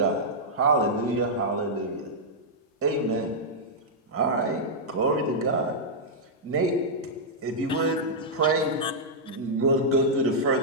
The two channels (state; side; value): normal; both; correlation -0.08